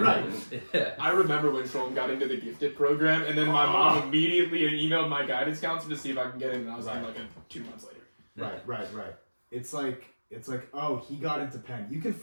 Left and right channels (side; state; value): both; inverted; correlation -1.00